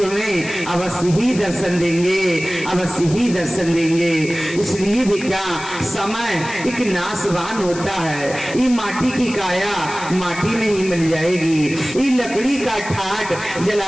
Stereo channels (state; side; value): noise; left; hiss, 13 dB below the sound